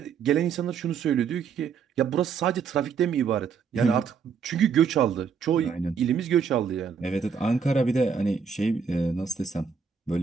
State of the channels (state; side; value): quieter; left; 6.3 dB